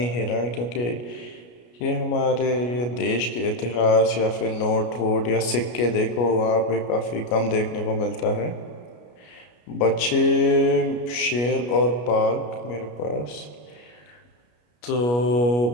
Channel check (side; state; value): right; late; 33 ms